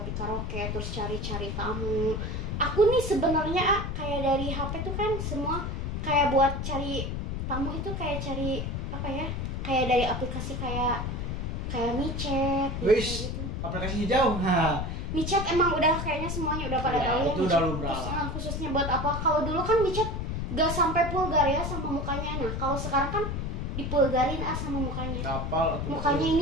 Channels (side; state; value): left; noise; rumble, 3 dB below the sound